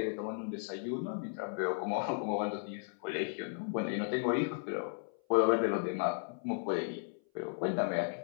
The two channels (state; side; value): silent; right; 54 dB below the other